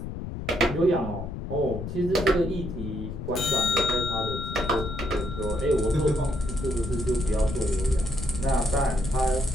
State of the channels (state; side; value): noise; left; rumble, 7 dB below the sound